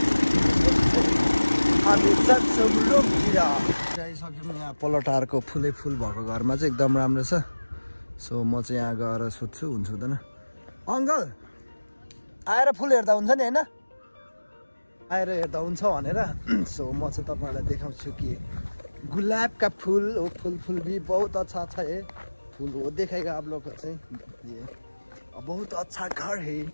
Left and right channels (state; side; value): inverted; both; correlation -1.00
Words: हामी जान्छौँ रुमतिर आइसक्यौँ यहाँ पलटारको फुलै फुल भएको घरमा चाहिँ एकदम राम्रो छ सो म चाहिँ यहाँ गएर सोध्छु हुन्छ हुँदैन अङ्कल आएर फुल हेर्दा हुन्छ नि होइन आएर हेर्दा हुन्छ भनेर सो म चाहिँ तपाईँहरूलाई देखाउँछु कि गुलाबका फूल हो फूल भी बहुत अच्छा अच्छा है फूल हो देखेगा आप लोग को चाहिँ ये बहुत अच्छा घर है यो